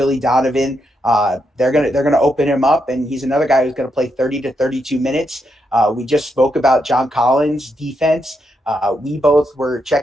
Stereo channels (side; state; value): both; normal; correlation 0.81